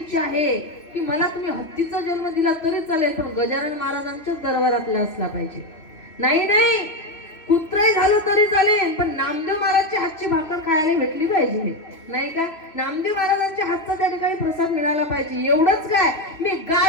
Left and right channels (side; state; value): right; late; 3.0 ms